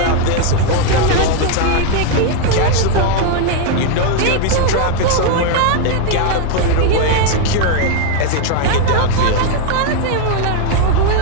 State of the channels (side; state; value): both; different; correlation 0.00